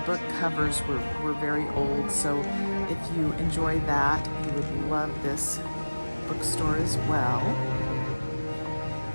book covers were very old, so if you enjoy that, you would love this bookstore as well.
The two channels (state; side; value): inverted; both; correlation -1.00